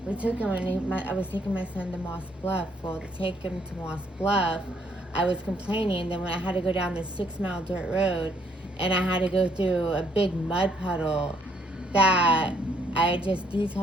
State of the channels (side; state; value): both; normal; correlation 0.69